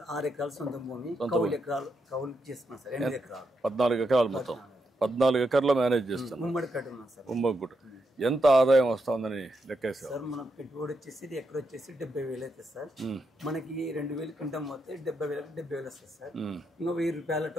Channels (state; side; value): normal; both; correlation 0.82